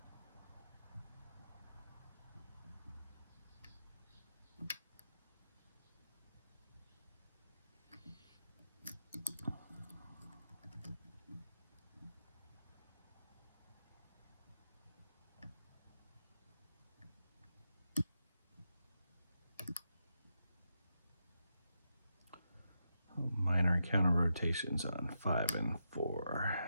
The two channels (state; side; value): inverted; both; correlation -0.86